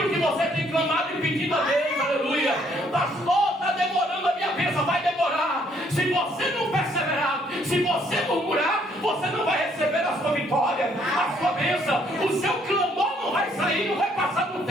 que você tem clamado e pedido a Deus, aleluia. Pastor, está demorando a minha bênção, vai demorar. Se você não perseverar, se você murmurar, você não vai receber a sua vitória, a sua bênção. O seu clamor não vai sair, não vai passar do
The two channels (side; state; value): both; normal; correlation 0.66